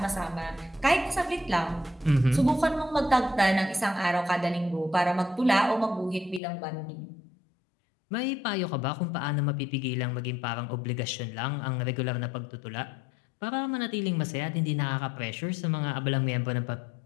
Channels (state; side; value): drops out; right; at 6.4 s